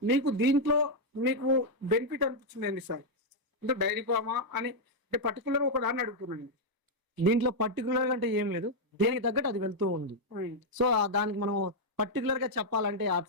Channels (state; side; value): late; left; 1.0 ms